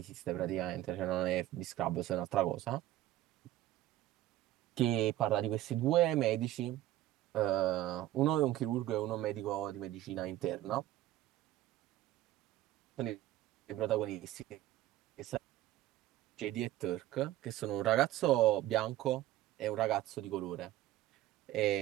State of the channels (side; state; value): left; quieter; 14.6 dB